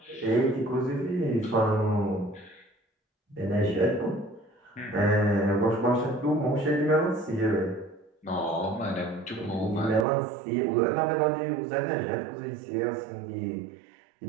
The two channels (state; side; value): drops out; left; at 10.1 s